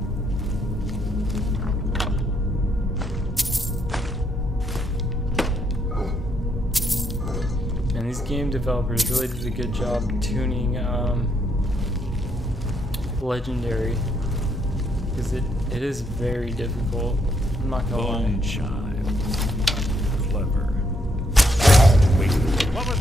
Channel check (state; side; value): normal; both; correlation 0.74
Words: Game developers really did a good job tuning Legendary, because it is very difficult. I'm not gonna lie. Bone chime. Clever. Wait, what was